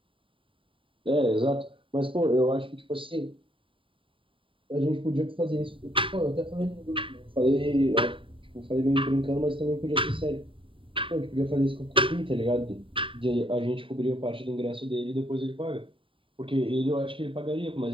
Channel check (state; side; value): late; left; 0.25 ms